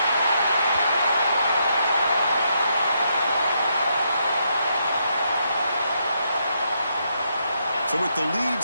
So with the lead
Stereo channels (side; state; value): both; inverted; correlation -0.78